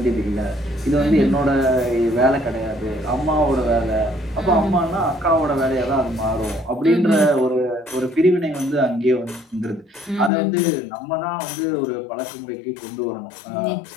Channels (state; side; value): drops out; right; at 10.3 s